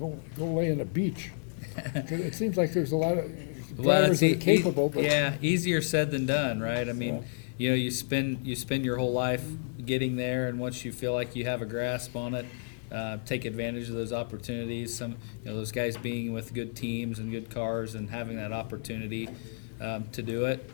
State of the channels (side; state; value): right; silent; digital silence